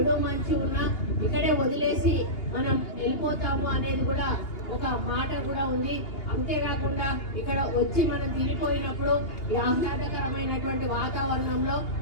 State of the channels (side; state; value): right; late; 2.8 ms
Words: మంచి ఉన్నా ఇక్కడే వదిలేసి మనం వెళ్ళిపోతాము అనేది కూడా ఒక మాట కూడా ఉంది. అంతేకాకుండా ఇక్కడ వచ్చి మనం తిరిగిపోయినప్పుడు ఈ ఆహ్లాదకరమైనటువంటి వాతావరణంలో